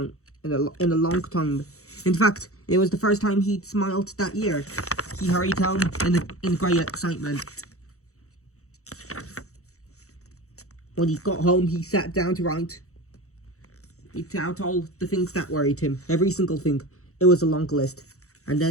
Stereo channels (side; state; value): right; late; 0.64 ms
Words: In a long time. In fact, it was the first time he'd smiled that year. He hurried home in great excitement. When he got home, he sat down to write out all the things that worried him. Every single thing. It was a long list. And